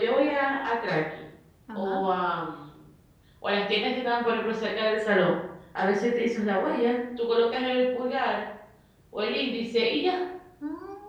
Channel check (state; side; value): identical; both; correlation 1.00